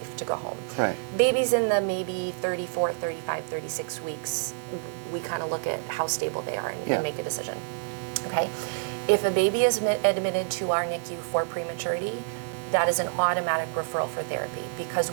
to go home. Right. Babies in the maybe 34, 35, 36 weeks, we kind of look at how stable they are and make a decision. Okay? If a baby is admitted to our NICU for prematurity, that is an automatic referral for therapy, because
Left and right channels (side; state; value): left; silent; 60 dB below the other